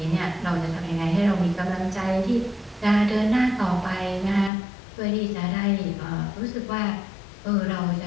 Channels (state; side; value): drops out; right; at 4.5 s